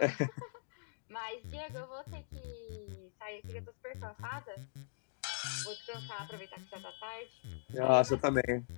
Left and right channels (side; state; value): right; silent; digital silence